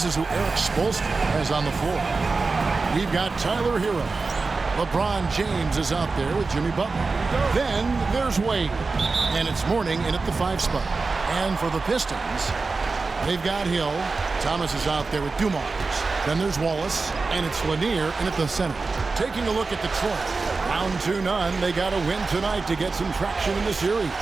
is who Eric Spoelstra has on the floor. We've got Tyler Hero. LeBron James is out there with Jimmy Butler. Then there's Wade. And it's Mourning in at the 5 spot. And for the Pistons, they've got Hill. Thomas is out there with Dumars. Then there's Wallace. And it's Lanier in at the center. Taking a look at Detroit. Down 2-0. They got to win tonight to get some traction in the series.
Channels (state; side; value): quieter; left; 4.0 dB